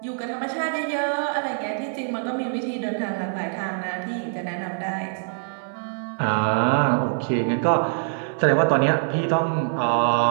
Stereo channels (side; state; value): left; silent; 62 dB below the other